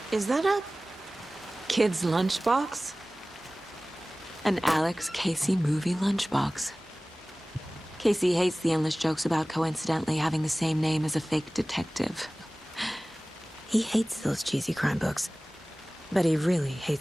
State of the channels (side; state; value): both; normal; correlation 0.98